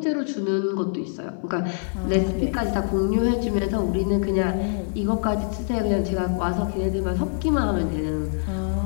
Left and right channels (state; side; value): silent; right; 62 dB below the other